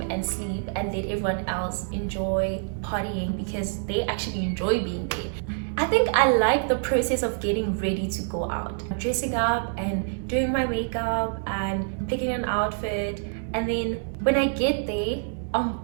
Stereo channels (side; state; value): left; silent; digital silence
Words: and sleep and let everyone else enjoy partying because they actually enjoy being there. I think I like the process of getting ready to go out, dressing up and doing my makeup and picking an outfit, and then when I get there, I'm